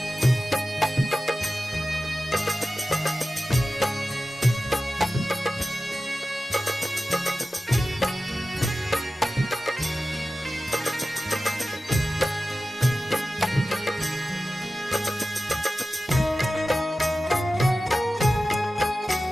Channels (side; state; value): both; normal; correlation 0.94